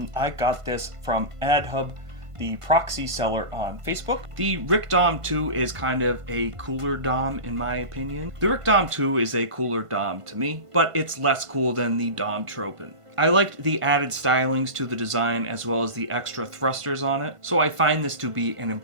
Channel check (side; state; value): left; late; 1.5 ms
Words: I got this from AdHub, the proxy seller on Facebook. The Rick Dom 2 is kind of a cooler Dom in my opinion. The Rick Dom 2 is a cooler Dom to me, but it's less cool than the Dom Tropin. I liked the added stylings to the design as well as the extra thrusters on it, so I find this to be an